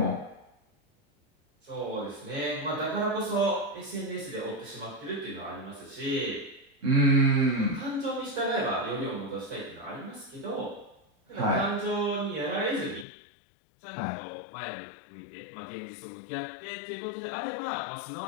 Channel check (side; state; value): right; drops out; at 13.1 s